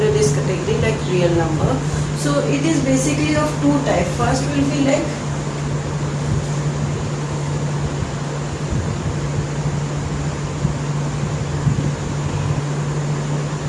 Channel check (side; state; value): both; identical; correlation 1.00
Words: this category like real number. So it is basically of two types. First will be like